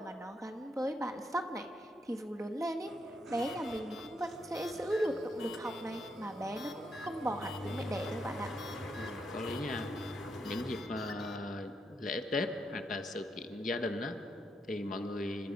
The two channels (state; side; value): normal; both; correlation 0.79